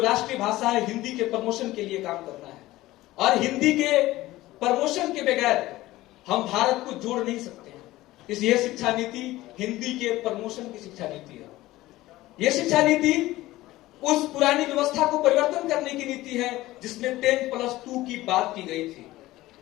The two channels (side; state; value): right; quieter; 17.2 dB